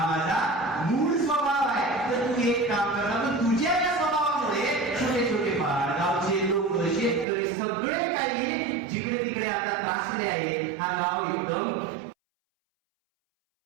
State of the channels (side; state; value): left; drops out; at 7.2 s